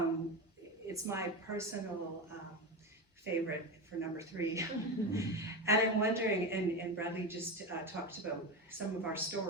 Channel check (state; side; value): normal; both; correlation 0.20